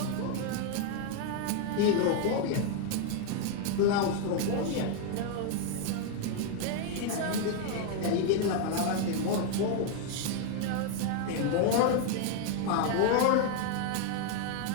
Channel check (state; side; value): different; both; correlation 0.00